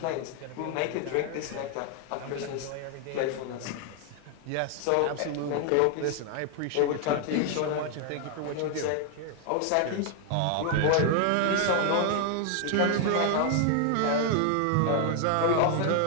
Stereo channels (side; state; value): both; different; correlation 0.00